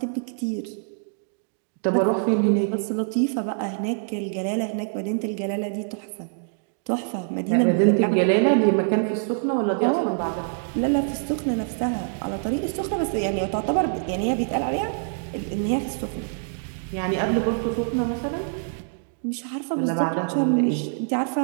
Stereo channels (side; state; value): left; silent; digital silence